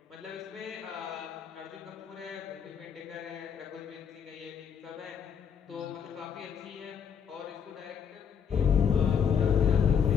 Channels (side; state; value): right; quieter; 7.3 dB